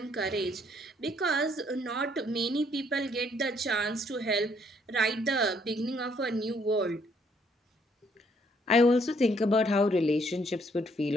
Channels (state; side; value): normal; both; correlation 0.68